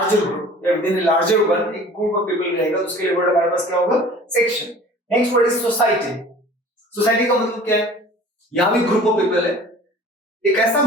group या विदिन ए लार्जर वन, एक ग्रुप ऑफ पीपल रहेगा तो उसके लिए वर्ड हमारे पास क्या होगा, section. Next word is society. Society का मतलब क्या है, यहाँ भी ग्रुप ऑफ पीपल है, एक ऐसा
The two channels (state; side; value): normal; both; correlation 0.45